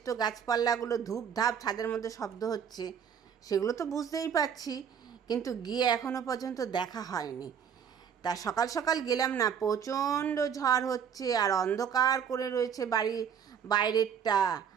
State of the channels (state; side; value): quieter; left; 7.8 dB